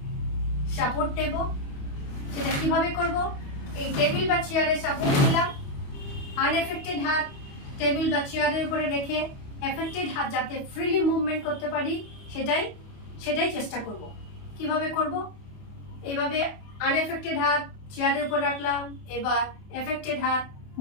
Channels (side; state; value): right; late; 28 ms